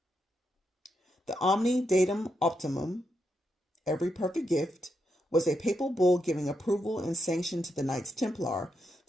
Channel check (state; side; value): normal; both; correlation 0.83